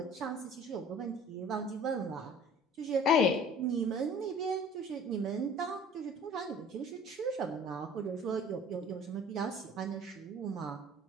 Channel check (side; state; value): both; normal; correlation 0.48